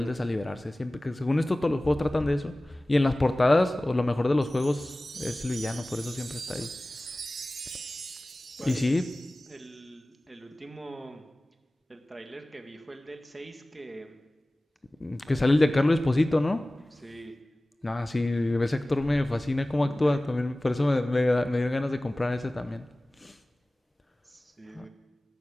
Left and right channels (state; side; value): normal; both; correlation 0.98